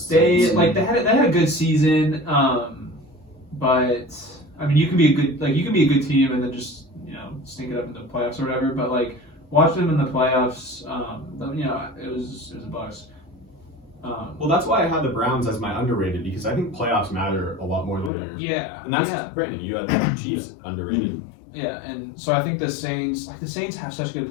They had a good season. But I mean, you can be a good team and then just stink it up in the playoffs or whatever. But like watching them in the playoffs, it was a Bucks. Well, that's why I had the Browns as my underrated, because I think playoffs matter a lot more than theirs. Yeah, And that's yeah. Brandon. You had the Chiefs underrated. Yeah, and so I think the Saints have such good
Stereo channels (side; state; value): right; drops out; at 18.1 s